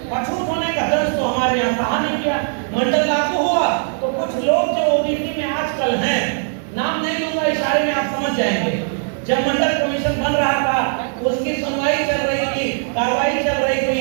अछूत होने का दर्द तो हमारे यहाँ सहा नहीं किया। मंडल लागू हुआ तो कुछ लोग जो ओबीसी में आजकल हैं, नाम नहीं लूंगा, इशारे में आप समझ जाएंगे, जब मंडल कमीशन बन रहा था, उसकी सुनवाई चल रही थी, कार्रवाई चल रही थी,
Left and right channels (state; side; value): silent; left; 66 dB below the other